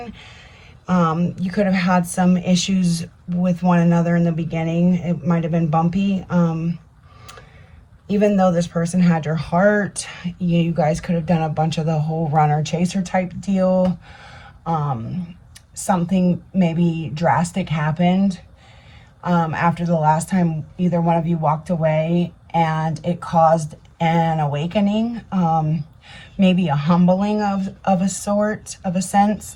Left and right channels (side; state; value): both; identical; correlation 1.00